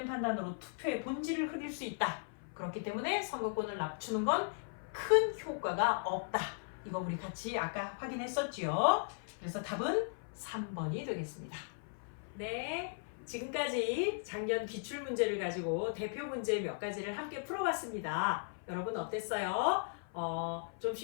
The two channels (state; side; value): silent; right; 53 dB below the other